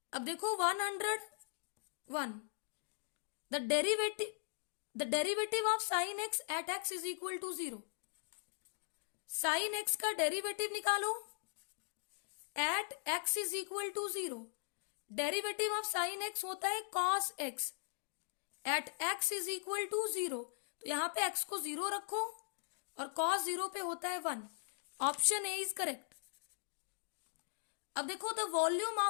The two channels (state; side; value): silent; right; digital silence